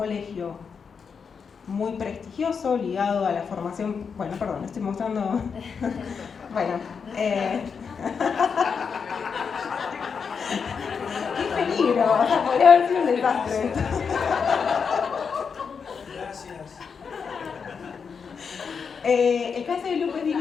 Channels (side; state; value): right; quieter; 6.0 dB